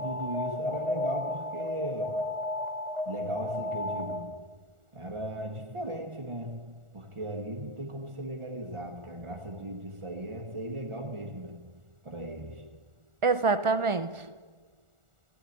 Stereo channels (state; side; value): late; left; 1.4 ms